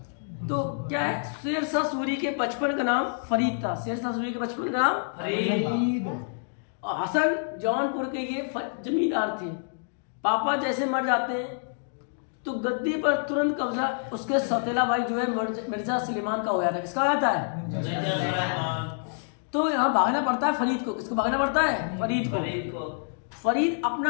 तो क्या है? शेरशाह सूरी के बचपन का नाम फरीद था। शेरशाह सूरी के बचपन का नाम फरीद। और हसन जौनपुर के ये जमींदार थे। पापा जैसे मर जाते हैं तो गद्दी पर तुरंत कब्जा उसके सौतेला भाई जो है मिर्जा सुलेमान का हो जाता है। किसका हो जाता है? मिर्जा सुलेमान। तो यहाँ भागना पड़ता है फरीद को। किसको भागना पड़ता है? फरीद को। फरीद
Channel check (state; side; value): silent; right; digital silence